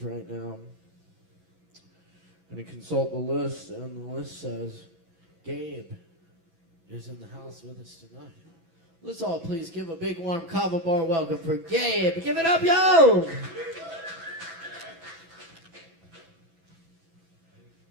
right now. I'm going to consult the list, and the list says Gabe is in the house with us tonight. Let's all please give a big warm Kava bar welcome for Gabe. Give it up, yo!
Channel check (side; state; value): left; late; 11 ms